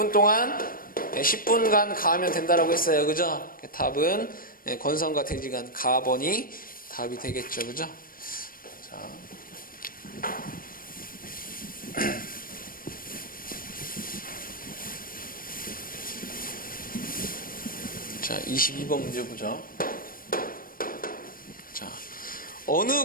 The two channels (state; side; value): late; right; 0.41 ms